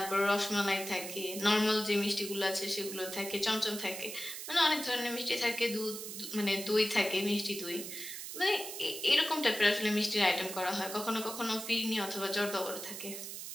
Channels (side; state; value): right; noise; hiss, 8 dB below the sound